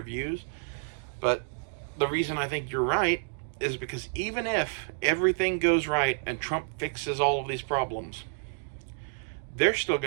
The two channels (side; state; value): left; silent; digital silence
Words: views. But the reason I think you're right is because even if everything goes right and Trump fixes all of these problems, they're still